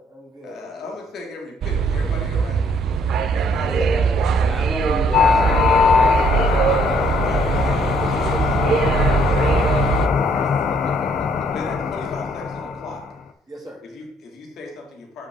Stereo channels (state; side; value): normal; both; correlation 0.65